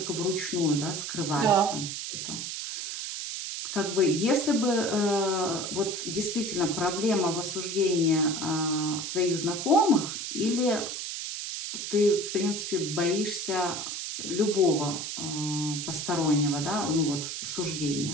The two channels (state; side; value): noise; right; hiss, 5 dB below the sound